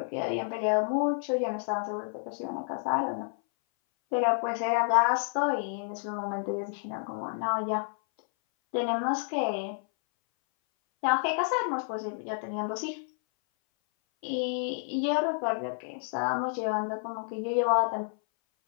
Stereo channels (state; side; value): silent; right; 58 dB below the other